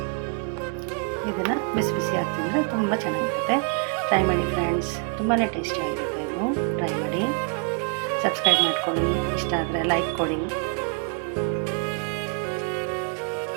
ಇದನ್ನು ಬಿಸಿ ಬಿಸಿ ಹಾಕ್ತಿದ್ರೆ ತುಂಬ ಚೆನ್ನಾಗಿರುತ್ತೆ. ಟ್ರೈ ಮಾಡಿ ಫ್ರೆಂಡ್ಸ್, ತುಂಬಾ ಟೇಸ್ಟಿಯಾಗಿರುತ್ತೆ. ಇದು ಟ್ರೈ ಮಾಡಿ, ಸಬ್ಸ್ಕ್ರೈಬ್ ಮಾಡ್ಕೊಳ್ಳಿ, ಇಷ್ಟ ಆದರೆ ಲೈಕ್ ಕೊಡಿ.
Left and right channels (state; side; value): quieter; left; 39.8 dB